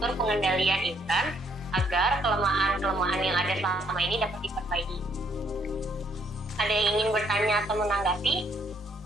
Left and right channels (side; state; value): both; normal; correlation 0.68